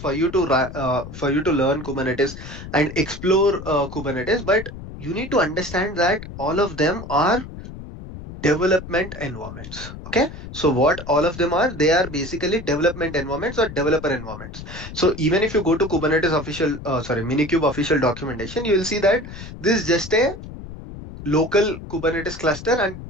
you to for you to learn Kubernetes and explore Kubernetes. But you need to understand that all of them are development environments. Okay, so what all of them are, they are basically development environments or developer environments. So even if you go to Kubernetes official Minikube official documentation, you will see that this is just a local Kubernetes cluster and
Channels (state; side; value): noise; left; rumble, 12 dB below the sound